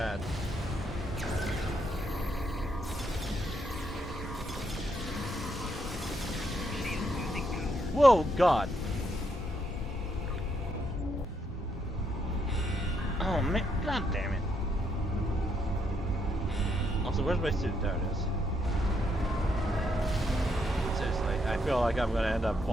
Whoa, God. Oh, man. God damn it. Also, where's my suit? There it is. Seriously, I feel like I'm going to end up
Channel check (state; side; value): normal; both; correlation 0.76